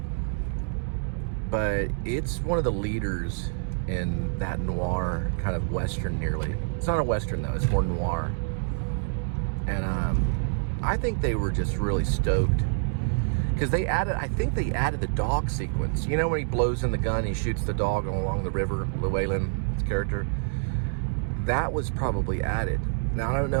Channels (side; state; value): left; silent; digital silence